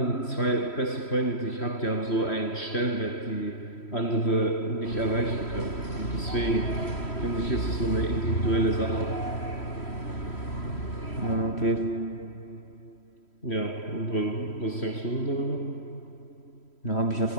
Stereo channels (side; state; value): right; late; 3.1 ms